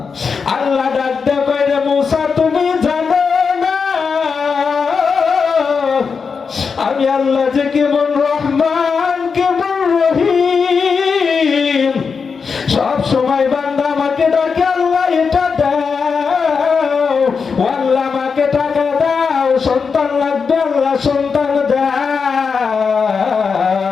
আল্লাহ ডাক দিয়ে কয়, রে মুসা, তুমি জানো না আমি আল্লাহ যে কেমন রহমান, কেমন রহিম, সব সময় বান্দা আমাকে ডাকে, আল্লাহ এটা দাও, আল্লাহ আমাকে টাকা দাও, সন্তান লাগবে, আল্লাহ সন্তান দাও,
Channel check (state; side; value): quieter; right; 5.5 dB